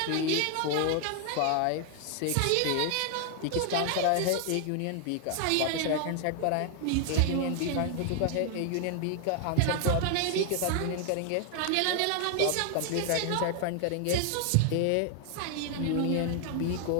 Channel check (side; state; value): both; different; correlation 0.00